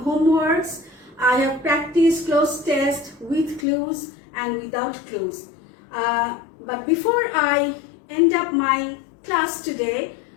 homeworks. I have practiced closed test with clues and without clues. But before I end up my class today,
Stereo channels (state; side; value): drops out; right; at 3.7 s